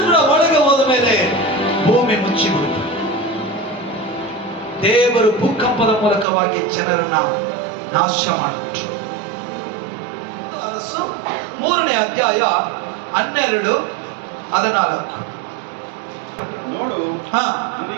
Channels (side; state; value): left; drops out; at 6.2 s